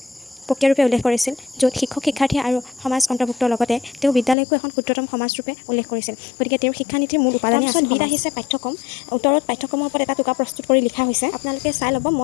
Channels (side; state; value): right; drops out; at 4.4 s